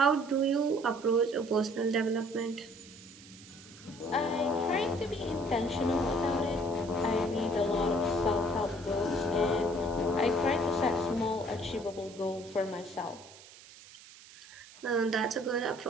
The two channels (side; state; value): right; noise; hiss, 20 dB below the sound